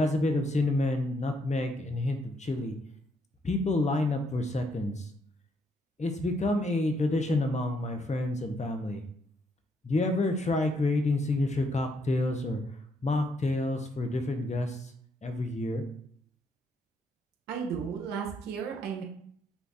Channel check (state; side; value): normal; both; correlation 0.74